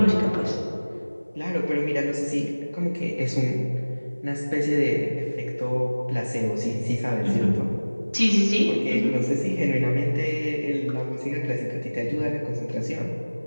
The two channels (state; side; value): inverted; both; correlation -1.00